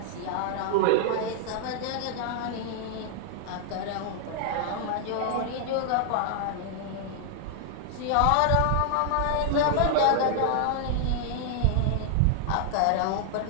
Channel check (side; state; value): both; different; correlation 0.00